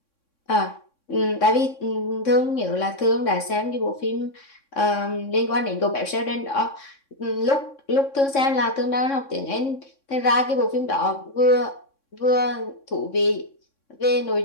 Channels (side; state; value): right; late; 3.6 ms